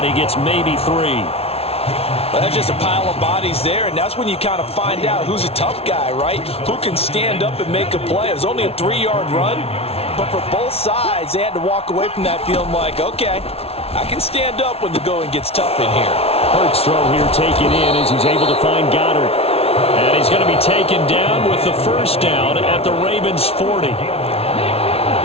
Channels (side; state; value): right; late; 0.29 ms